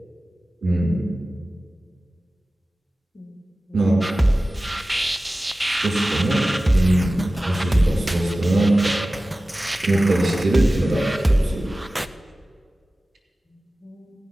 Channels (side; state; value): both; normal; correlation 0.96